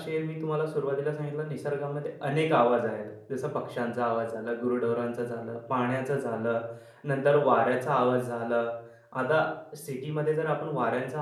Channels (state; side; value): identical; both; correlation 1.00